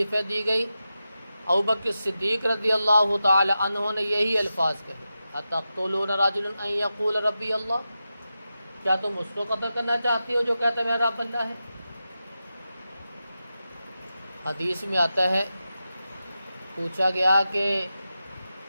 دی گئی، ابوبکر صدیق رضی اللہ تعالی عنہ نے یہی الفاظ کہے، اتقتلون رجلا ان یقول ربی اللہ، کیا تم اس کو قتل کرنا چاہتی ہو جو کہتا ہے میرا رب اللہ ہے؟ حدیث میں آتا ہے، پوچھا گیا کہ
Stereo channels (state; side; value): inverted; both; correlation -0.91